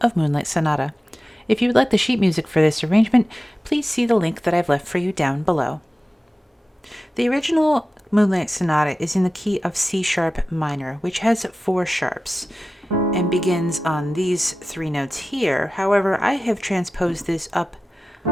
of Moonlight Sonata. If you would like the sheet music for this arrangement, please see the link that I've left for you down below. The original Moonlight Sonata is in the key of C sharp minor, which has 4 sharps and begins on these 3 notes here. However, I have transposed this up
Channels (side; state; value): both; normal; correlation 0.95